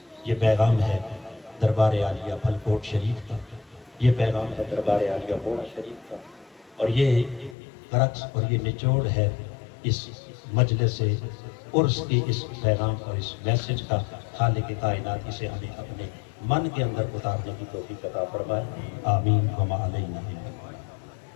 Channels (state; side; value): drops out; right; at 7.6 s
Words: یہ پیغام ہے دربار عالیہ پھلکوٹ شریف کا، یہ پیغام ہے دربار عالیہ موڑا شریف کا، اور یہ کرکس اور یہ نچوڑ ہے اس مجلس عرس کے اس پیغام اور اس میسج کا۔ خالق کائنات اسے ہمیں اپنے من کے اندر اتارنے کی توفیق عطا فرمائے، آمین وما علینا۔